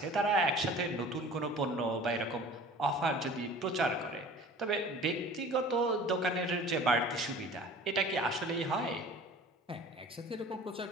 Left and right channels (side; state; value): both; normal; correlation 0.44